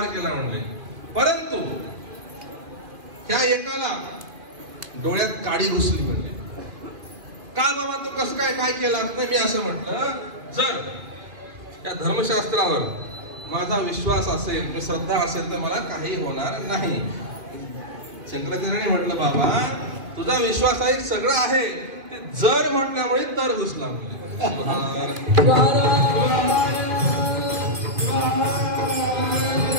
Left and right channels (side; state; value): left; late; 2.2 ms